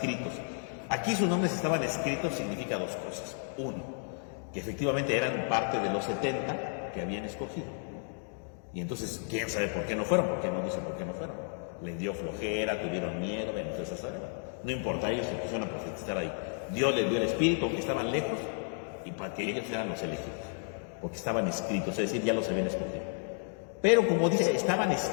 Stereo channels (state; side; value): silent; right; 56 dB below the other